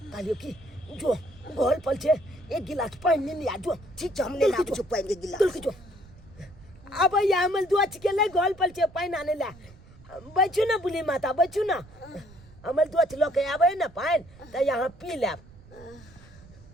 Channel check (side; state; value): right; noise; rumble, 22 dB below the sound